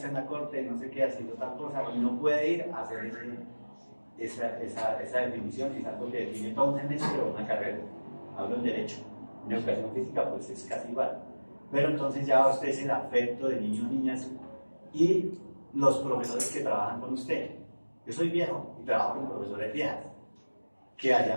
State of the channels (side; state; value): both; inverted; correlation -1.00